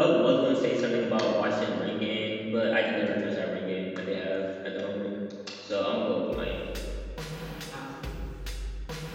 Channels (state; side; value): identical; both; correlation 1.00